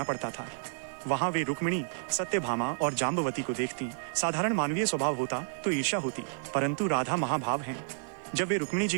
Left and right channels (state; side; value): silent; left; 57 dB below the other